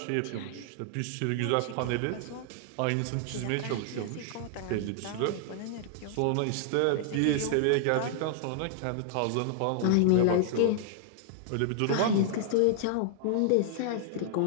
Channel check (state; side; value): different; both; correlation -0.01